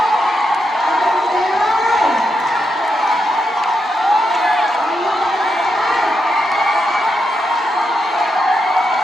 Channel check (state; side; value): normal; both; correlation 0.83